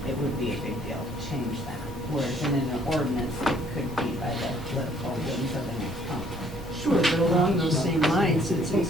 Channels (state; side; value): normal; both; correlation 0.62